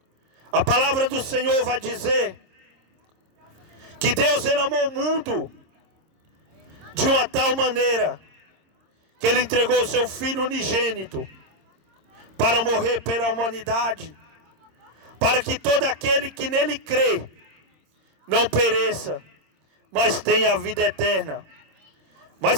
A palavra do Senhor vai dizer que Deus, ele amou o mundo de uma tal maneira que ele entregou o seu Filho unigênito para morrer pela humanidade, para que todo aquele que nele crê não pereça, mas tenha a vida eterna.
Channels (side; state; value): left; late; 26 ms